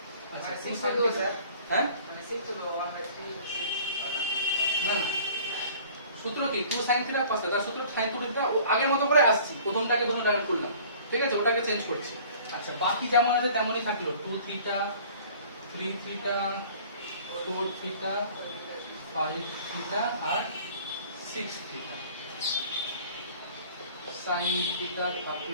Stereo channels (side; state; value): both; inverted; correlation -0.49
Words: আচ্ছা মানে 2 6 sin to theta স্যার হ্যাঁ মানে 6 to 1/3 না না সূত্র কি 2 sin থিটা cos থিটা সূত্র sin 2 থিটা ও আগের মতো করে আসছি প্রথমটাকে ডাইরেক্ট করলাম ঠিক আছে ওটাকে চেঞ্জ করছি আচ্ছা বাকি যেমন আছে তেমনই থাকলো 2 থিটা 3 থিটা 4 থিটা 5 থিটা আর 6 থিটা sin থিটা